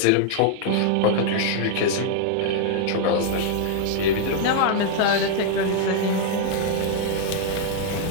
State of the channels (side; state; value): both; different; correlation 0.00